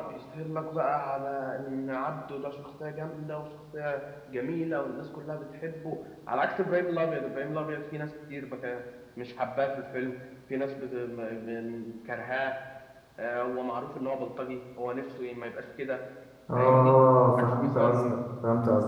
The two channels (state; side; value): identical; both; correlation 1.00